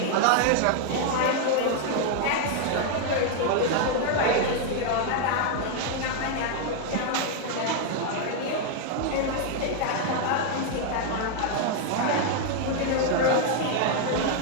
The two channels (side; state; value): both; different; correlation 0.00